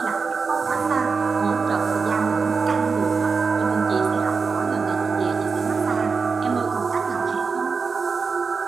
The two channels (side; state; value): left; quieter; 5.0 dB